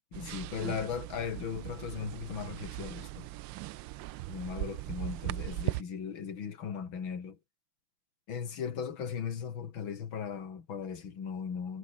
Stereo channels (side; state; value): right; late; 6.1 ms